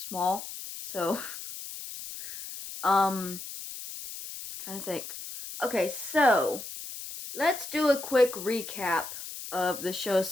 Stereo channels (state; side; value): noise; left; hiss, 10 dB below the sound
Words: So, um, trying to think. Okay, so let's do a quick recap of the show